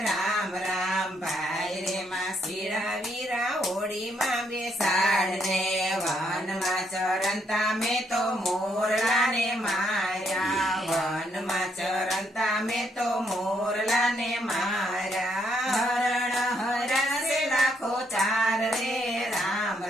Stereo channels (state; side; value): normal; both; correlation 0.74